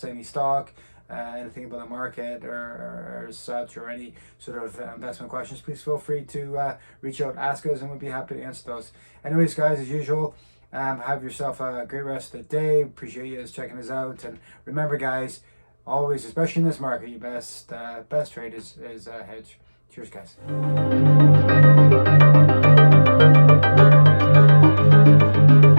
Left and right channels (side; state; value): both; inverted; correlation -1.00